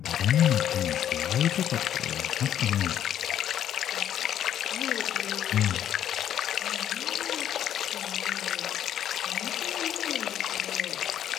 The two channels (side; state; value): right; quieter; 10.5 dB